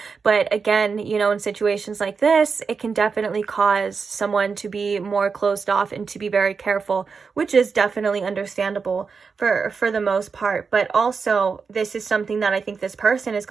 But again, you know, in situations like this, it can definitely cause someone to be more closed off and to be very careful, which is definitely understandable for the most part. But also, this is something that I think this person is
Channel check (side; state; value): left; quieter; 5.3 dB